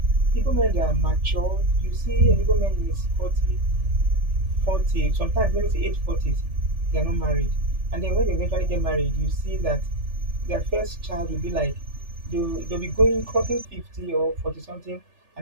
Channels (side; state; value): left; late; 3.4 ms